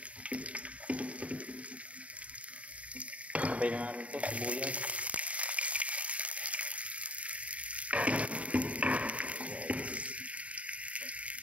Sabay na natin ito, sibuyas.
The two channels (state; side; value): late; left; 0.066 ms